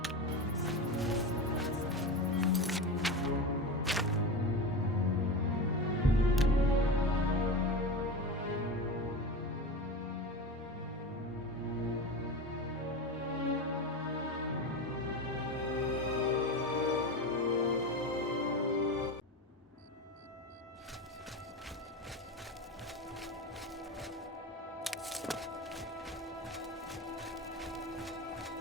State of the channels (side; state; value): both; normal; correlation 0.24